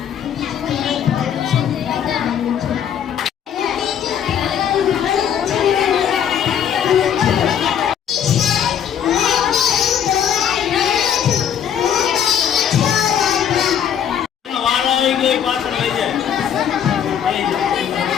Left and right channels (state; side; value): quieter; right; 8.9 dB